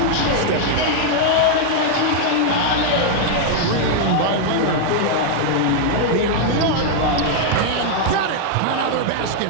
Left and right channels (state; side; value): different; both; correlation 0.00